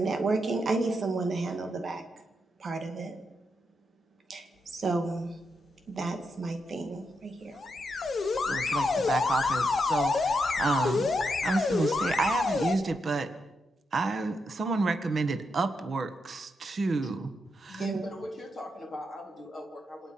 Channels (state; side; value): normal; both; correlation 0.83